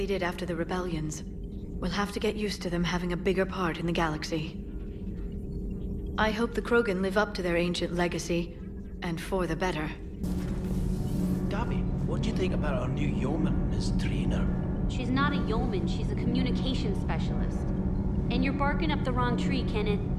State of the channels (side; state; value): both; identical; correlation 1.00